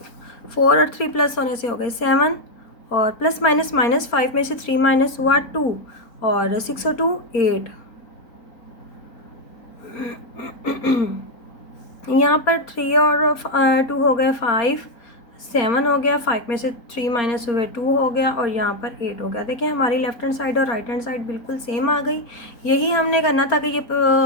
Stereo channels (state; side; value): late; right; 4.3 ms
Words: 4 और 3 प्लस होने से हो गए 7, और प्लस माइनस -5 में से 3 माइनस हुआ 2, और 6 और 2 8। यहाँ पर 3 और 2 हो गए 5, 7 हो गया, 5 में से 3 माइनस हुए 2 हो गया, और यहाँ पर 8 हो गया। देखिए हमारी लेफ़्ट हैंड साइड और राइट हैंड साइड बिल्कुल सेम आ गई। यही हमने करना था कि ये